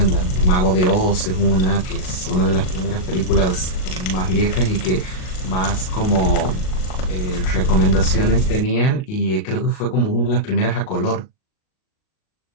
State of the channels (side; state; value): right; late; 38 ms